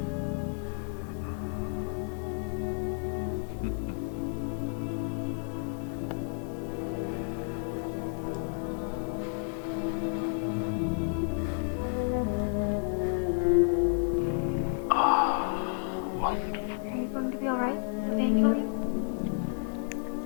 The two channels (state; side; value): silent; right; digital silence